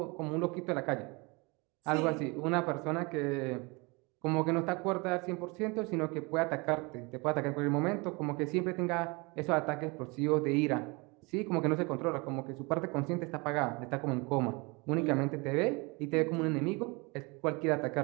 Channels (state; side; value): quieter; left; 27.6 dB